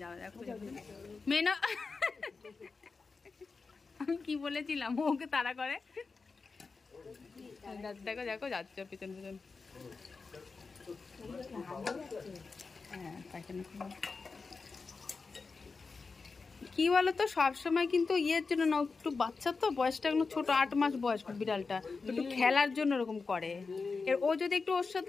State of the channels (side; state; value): right; quieter; 4.4 dB